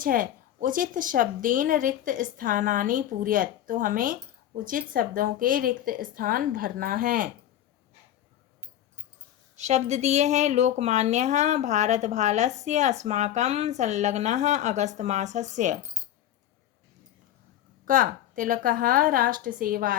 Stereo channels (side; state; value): right; quieter; 11.8 dB